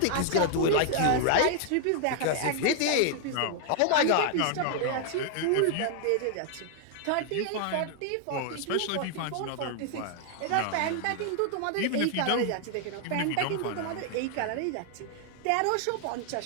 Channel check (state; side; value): different; both; correlation 0.00